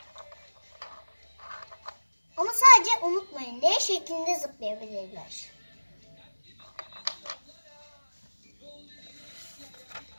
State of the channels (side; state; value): both; inverted; correlation -1.00